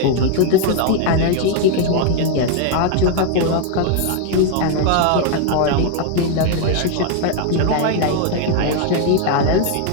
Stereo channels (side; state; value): both; different; correlation 0.01